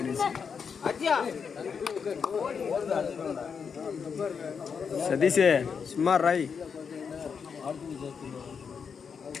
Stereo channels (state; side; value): quieter; right; 6.3 dB